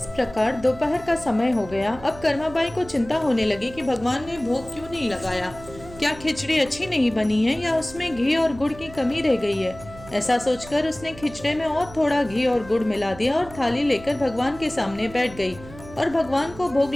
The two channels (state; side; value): noise; right; hum, 18 dB below the sound